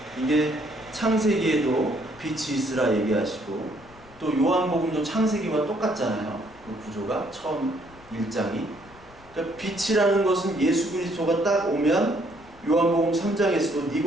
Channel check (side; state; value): left; noise; rumble, 24 dB below the sound